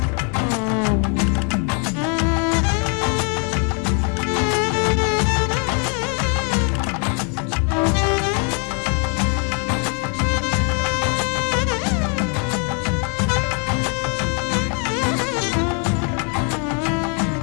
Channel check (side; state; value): right; quieter; 38.9 dB